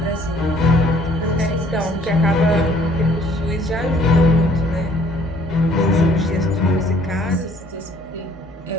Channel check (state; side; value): normal; both; correlation 0.59